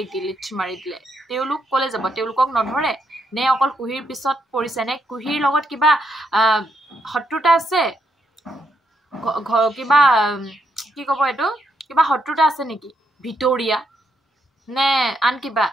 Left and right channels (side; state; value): both; normal; correlation 0.77